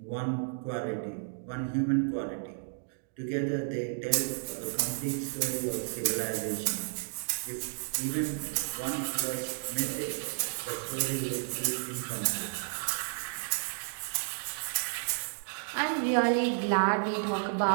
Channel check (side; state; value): left; silent; digital silence